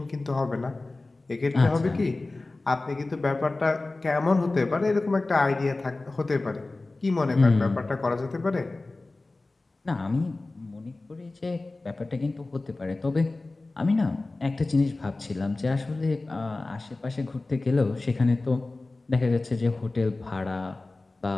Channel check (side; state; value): right; quieter; 3.2 dB